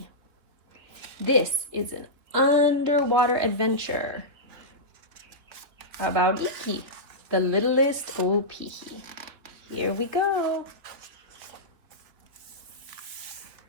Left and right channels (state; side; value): late; left; 3.3 ms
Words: This is an underwater adventure about Iki, the littlest Opihi. Here we go.